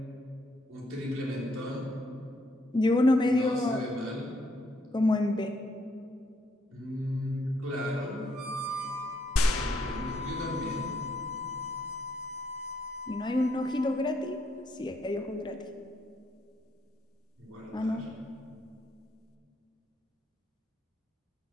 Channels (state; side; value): normal; both; correlation 0.73